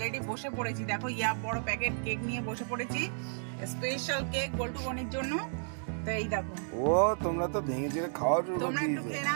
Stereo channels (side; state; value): left; silent; digital silence